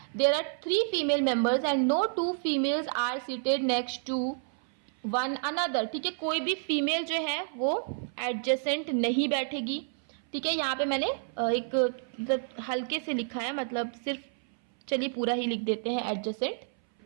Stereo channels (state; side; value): silent; left; 58 dB below the other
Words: There are 3 female members and no 2 females are seated next to one another, ठीक है, कोई भी फीमेल जो है वो एडजेसेंट नहीं बैठेगी, ठीक है। यहाँ पे मैंने एक मतलब हल्के से लिखा है, मतलब सिर्फ चलिए पूरा ही लिख देते हैं एडजेसेंट।